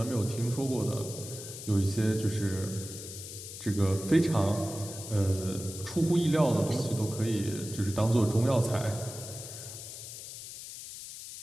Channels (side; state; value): left; noise; hiss, 11 dB below the sound